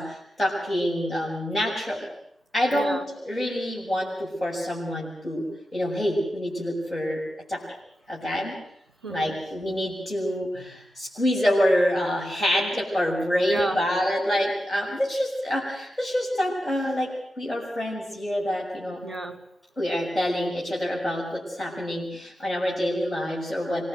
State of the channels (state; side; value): normal; both; correlation 0.90